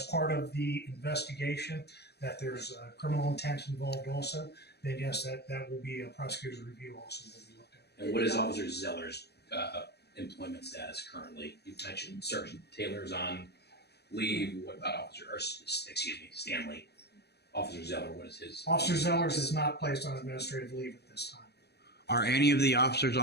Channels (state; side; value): late; right; 0.48 ms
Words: part of the investigation, that there's criminal intent involved also, then yes, that will be a prosecutor's review also will be looked at. And what is Officer Zeller's employment status currently? You mentioned Sergeant Taylor's on leave. What about Stanley? Officer Zeller, what is his? Officer Zeller's is not placed on administrative leave at this time. Are any of the officers